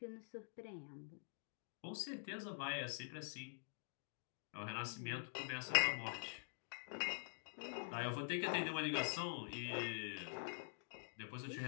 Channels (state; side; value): silent; right; digital silence